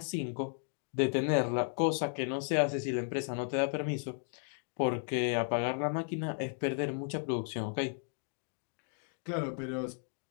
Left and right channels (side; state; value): right; silent; 55 dB below the other